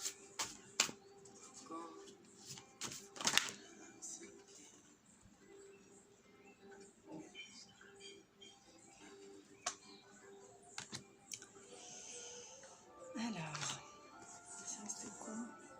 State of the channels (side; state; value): both; identical; correlation 1.00